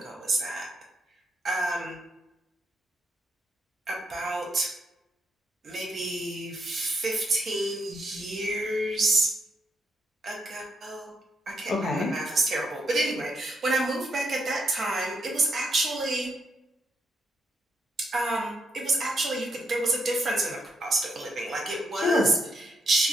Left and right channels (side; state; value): both; normal; correlation 0.79